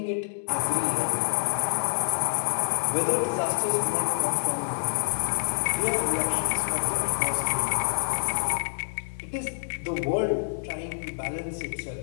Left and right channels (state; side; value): silent; right; digital silence